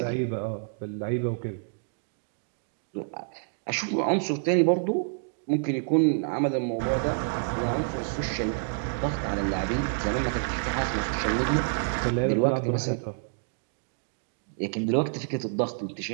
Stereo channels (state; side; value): silent; left; digital silence